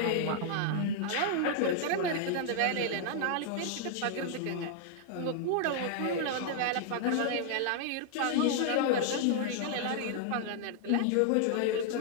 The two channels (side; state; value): both; different; correlation 0.00